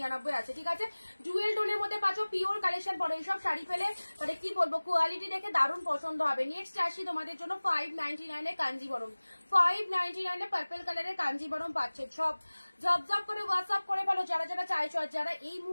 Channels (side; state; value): both; inverted; correlation -1.00